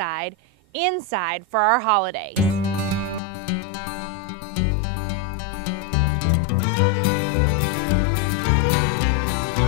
inside for our holidays.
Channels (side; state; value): right; drops out; at 3.2 s